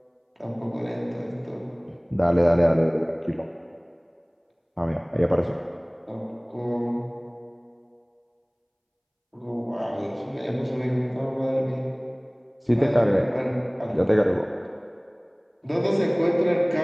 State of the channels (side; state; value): both; identical; correlation 1.00